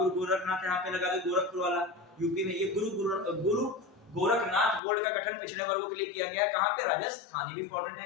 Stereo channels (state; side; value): drops out; right; at 4.8 s